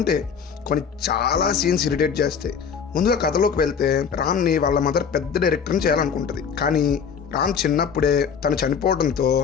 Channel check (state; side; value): quieter; right; 6.8 dB